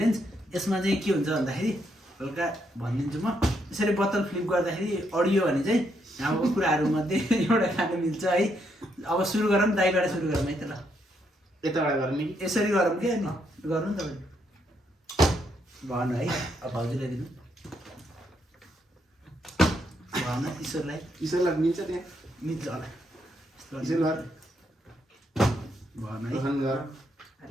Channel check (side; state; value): both; normal; correlation 0.76